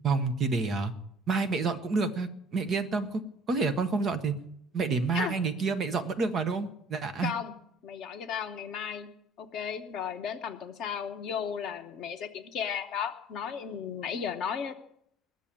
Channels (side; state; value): both; normal; correlation 0.52